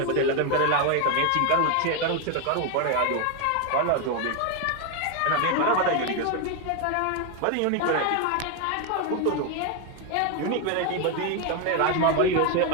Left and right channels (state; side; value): different; both; correlation 0.02